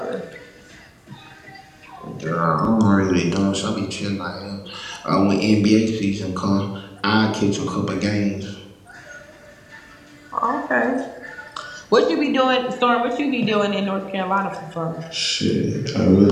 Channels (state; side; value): identical; both; correlation 1.00